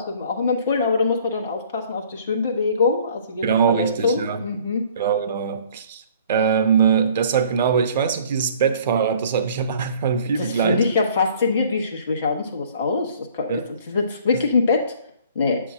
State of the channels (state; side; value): inverted; both; correlation -0.54